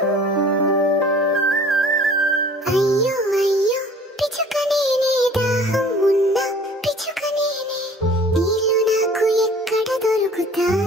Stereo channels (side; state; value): both; normal; correlation 0.49